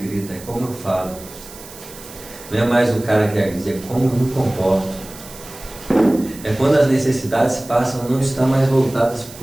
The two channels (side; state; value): right; noise; hiss, 17 dB below the sound